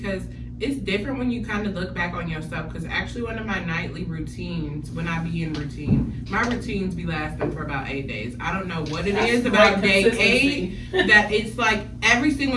it's different when you kind of look back on yourself. Because actually, one of my nightly routines, when I be in routine, my routines be lasting for about 8 days. I don't know what it is about day 8 that it's like every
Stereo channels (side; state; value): both; identical; correlation 1.00